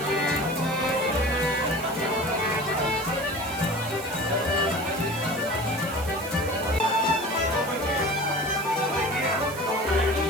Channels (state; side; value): noise; right; hiss, 13 dB below the sound